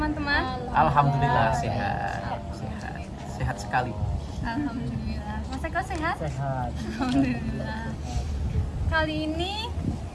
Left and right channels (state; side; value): identical; both; correlation 1.00